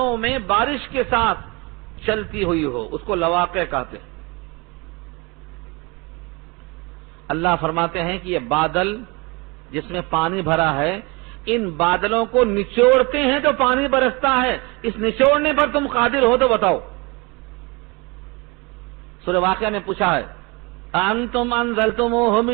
میں بارش کے ساتھ چلتی ہوئی ہو، اس کو لواقع کہتے ہیں۔ اللہ فرماتے ہیں کہ یہ بادل جس میں پانی بھرا ہے، ان بادلوں کو نچوڑتے ہیں تو پانی برستا ہے، اس نچوڑنے پر تم قادر ہو تو بتاؤ۔ سورہ واقعہ میں پوچھا ہے انتم انزلتموہ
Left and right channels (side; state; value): left; quieter; 27.2 dB